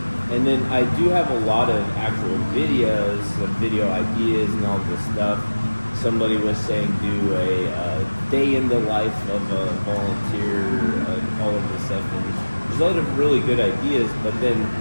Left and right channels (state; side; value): inverted; both; correlation -1.00